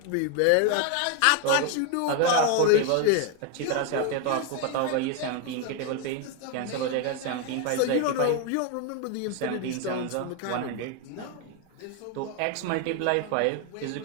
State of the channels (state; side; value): different; both; correlation 0.01